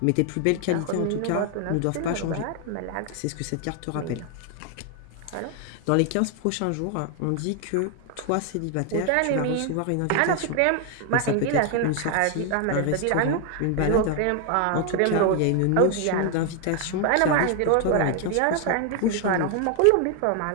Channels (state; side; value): different; both; correlation 0.00